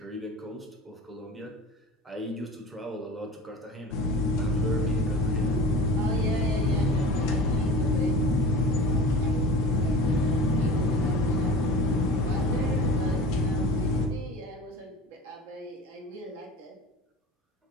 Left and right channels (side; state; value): both; normal; correlation 0.36